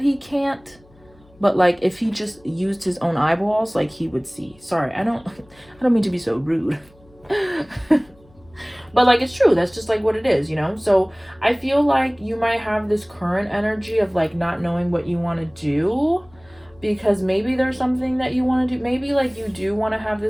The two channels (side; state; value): left; noise; hum, 29 dB below the sound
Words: he can't, but like if he just used his own eyeballs, like he would see. Sorry, I don't mean to be so rude. But like it's true, that's just like what it is, you know. So I feel like you might have this current energy of like not knowing what you want to do, because maybe there's something that you want to do. Maybe like you do want to have